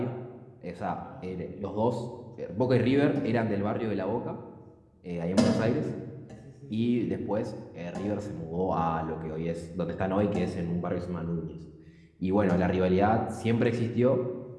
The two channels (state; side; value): identical; both; correlation 1.00